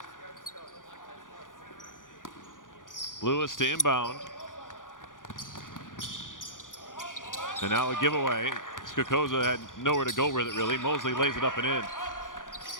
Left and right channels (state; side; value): late; right; 0.88 ms